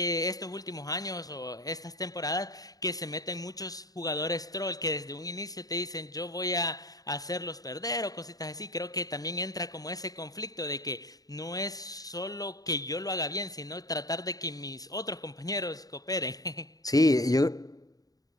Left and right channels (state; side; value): late; right; 0.18 ms